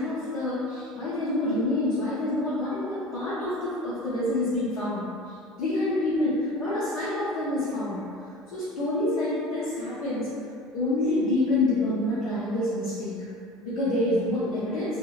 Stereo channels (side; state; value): both; normal; correlation 0.37